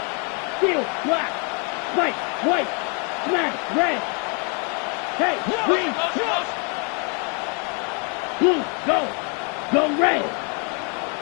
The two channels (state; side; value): quieter; right; 36.0 dB